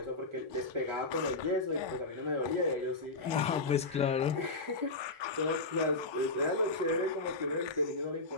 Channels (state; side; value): quieter; right; 3.3 dB